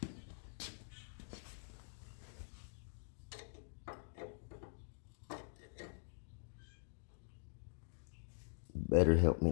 Better help me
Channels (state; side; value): silent; right; digital silence